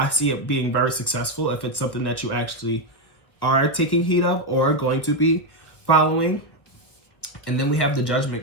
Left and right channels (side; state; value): right; late; 1.5 ms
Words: see it being very successful if it's something that you actually are taking heed of or going to be following. And then we have the